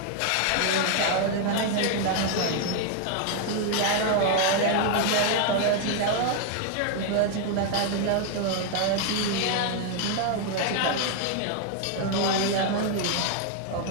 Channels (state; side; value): different; both; correlation 0.01